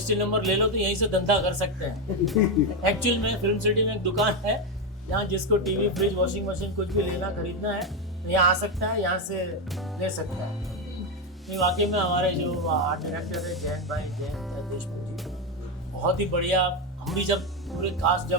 नंबर ले लो तो यहीं से धंधा कर सकते हैं। एक्चुअल में फिल्म सिटी में एक दुकान है यहाँ जिसको टीवी, फ्रिज, वॉशिंग मशीन कुछ भी लेना खरीदना है तो यहाँ आ सकता है, यहाँ से ले सकता है। नहीं, वाकई में हमारे जो आर्ट डायरेक्टर है जयंत देशमुख जी, बहुत ही बढ़िया। हम भी जब पूरे कास्ट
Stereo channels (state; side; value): normal; both; correlation 0.09